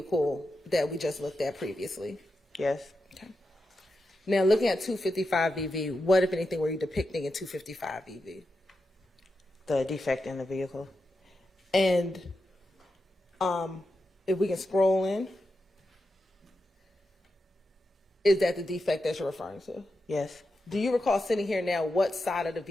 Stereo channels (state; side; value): normal; both; correlation 0.88